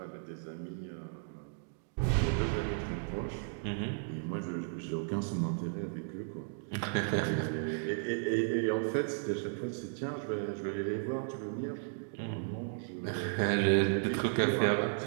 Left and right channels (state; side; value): silent; left; digital silence